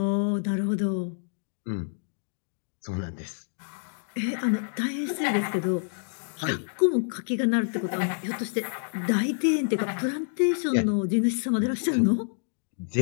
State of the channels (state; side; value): silent; right; digital silence